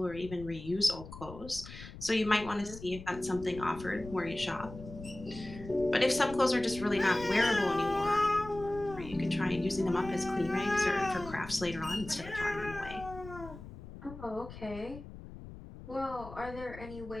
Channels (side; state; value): left; noise; rumble, 14 dB below the sound